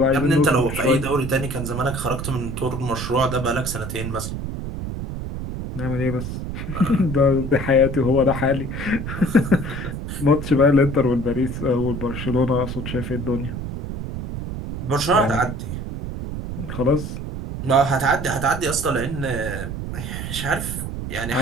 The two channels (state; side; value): noise; right; rumble, 6 dB below the sound